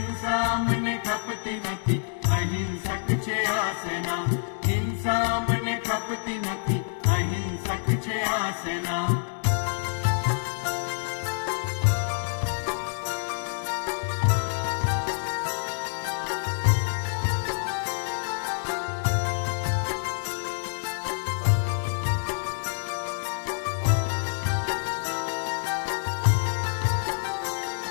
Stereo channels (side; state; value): right; silent; digital silence